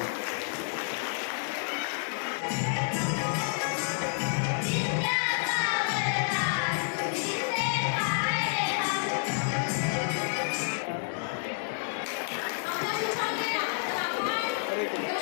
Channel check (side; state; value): right; silent; digital silence